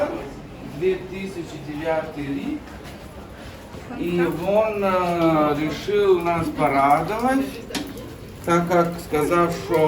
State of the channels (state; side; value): identical; both; correlation 1.00